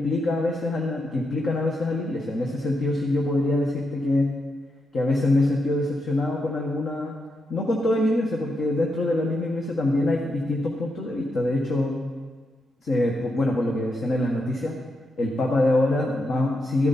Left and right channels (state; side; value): normal; both; correlation 0.83